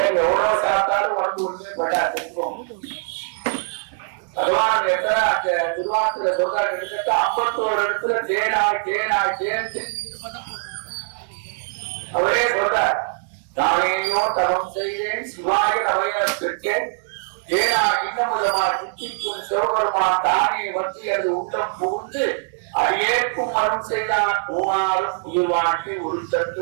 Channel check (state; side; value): silent; left; digital silence